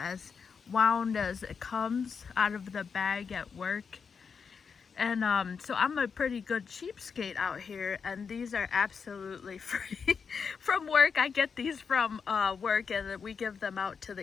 wound as it comes out of the bag at work. And so I'm a pretty good cheapskate out here, and these are absolutely free from work. I get these from work, and we give them out to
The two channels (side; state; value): right; quieter; 6.0 dB